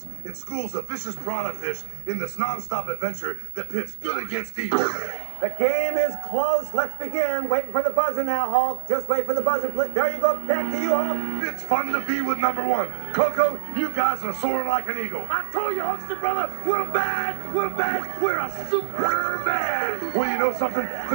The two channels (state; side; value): silent; left; digital silence